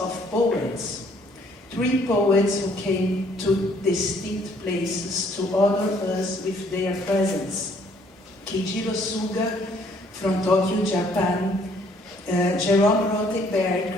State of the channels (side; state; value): both; normal; correlation 0.63